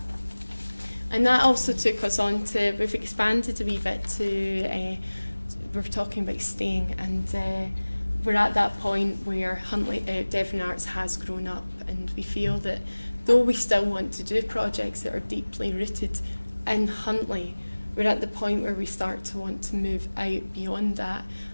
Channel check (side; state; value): both; inverted; correlation -1.00